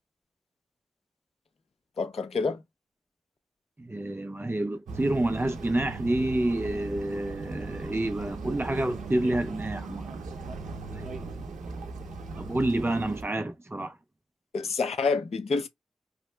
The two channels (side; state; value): both; normal; correlation 0.88